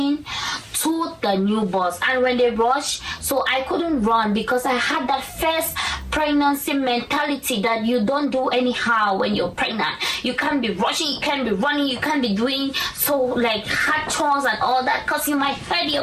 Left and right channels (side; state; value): both; identical; correlation 1.00